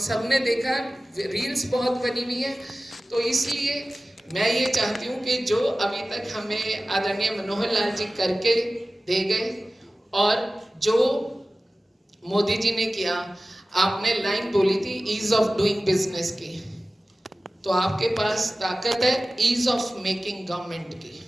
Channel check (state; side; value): normal; both; correlation 0.96